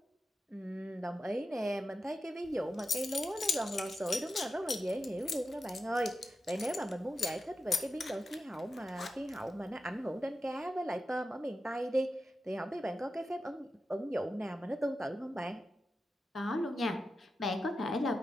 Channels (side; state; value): both; normal; correlation 0.91